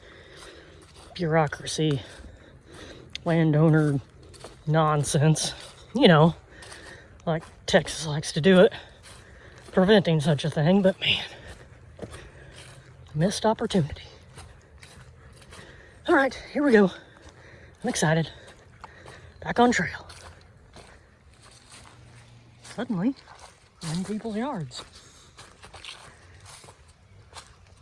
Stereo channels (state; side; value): identical; both; correlation 1.00